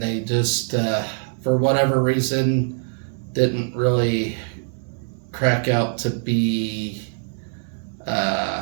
they just, for whatever reason, didn't really crack out to be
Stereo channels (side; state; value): left; silent; digital silence